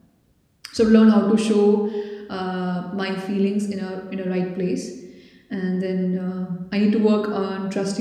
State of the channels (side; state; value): both; identical; correlation 1.00